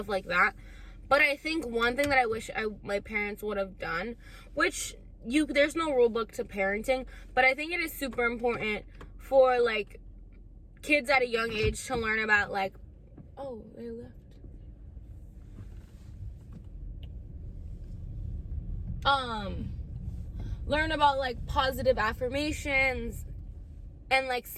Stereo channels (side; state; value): both; identical; correlation 1.00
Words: like that. But I think one thing that I wish my parents would have done, which there's no rule book to parenting, but I think it is super important for like kids at a young age to learn about like, oh, they left. Learn about like positive affirmations and like